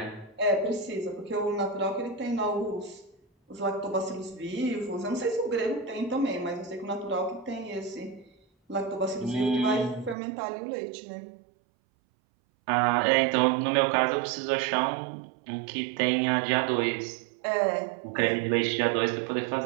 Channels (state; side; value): drops out; left; at 10.2 s